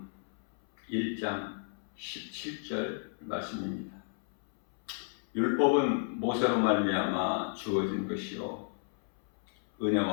1장 17절 말씀입니다. 율법은 모세로 말미암아 주어진 것이요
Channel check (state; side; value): silent; right; 56 dB below the other